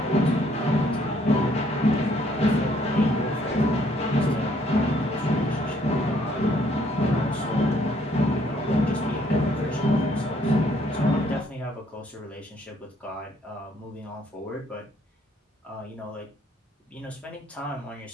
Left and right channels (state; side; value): normal; both; correlation 0.66